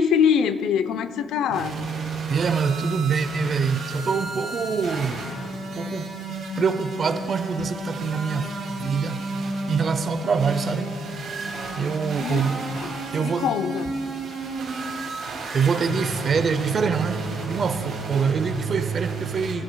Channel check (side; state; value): both; normal; correlation 0.72